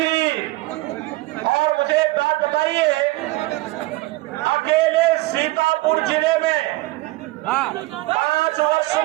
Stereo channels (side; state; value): left; quieter; 20.4 dB